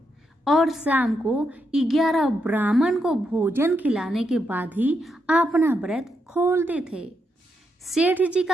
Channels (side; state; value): both; normal; correlation 0.81